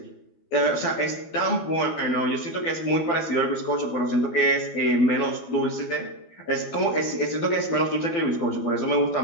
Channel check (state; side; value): late; right; 12 ms